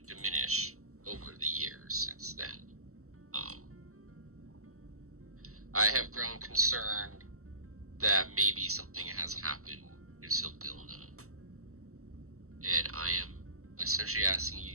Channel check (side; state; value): left; late; 0.64 ms